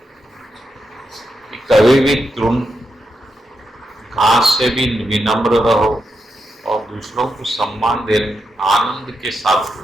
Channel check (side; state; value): both; normal; correlation 0.85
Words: कि कभी भी तृण घास से भी विनम्र रहो, और दूसरों को सम्मान देने आनंद के साथ